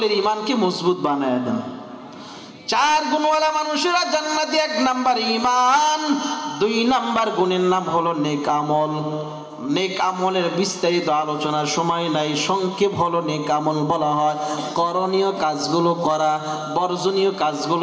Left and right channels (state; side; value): identical; both; correlation 1.00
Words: ঈমানকে মজবুত বানায় দেন। 4 গুণওয়ালা মানুষেরা জান্নাতে। 1 নাম্বার ঈমান, 2 নাম্বার গুণের নাম হলো নেক আমল। নেক আমলের বিস্তারিত আলোচনার সময় নাই, সংক্ষেপ হলো নেক আমল বলা হয় করণীয় কাজগুলো করা, বর্জনীয়